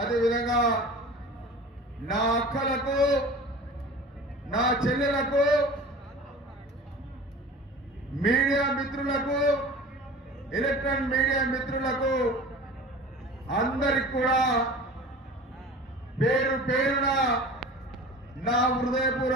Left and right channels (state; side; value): normal; both; correlation 0.39